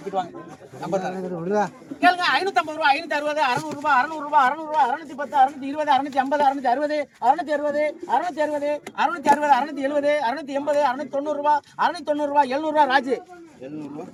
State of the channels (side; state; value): both; identical; correlation 1.00